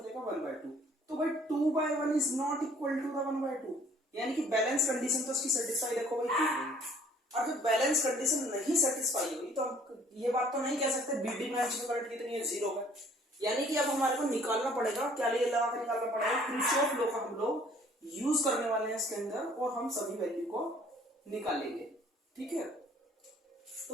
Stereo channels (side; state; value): both; normal; correlation 0.57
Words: 1/2। तो भाई 2/1 is not equal to the 1/2, यानी कि बैलेंस कंडीशन तो उसकी सेटिस्फाई देखो भाई की गई। और जब बैलेंस कंडीशन नहीं सेटिस्फाई हुई तो हम ये बात तो नहीं कह सकते बीडी ब्रांच में करंट कितनी है, 0 है। यानी कि अब हमारे को निकालना पड़ेगा, क्या लिए लगा के निकालना पड़ेगा, किरचॉफ लॉ का हम लोग यूज करने वाले हैं इसके अंदर और हम सभी वैल्यू को निकालेंगे। ठीक है,